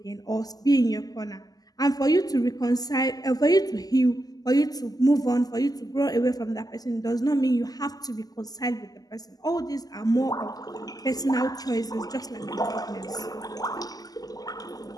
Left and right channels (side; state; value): right; late; 0.18 ms